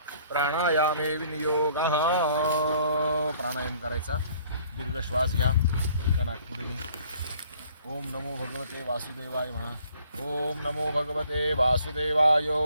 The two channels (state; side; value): inverted; both; correlation -0.59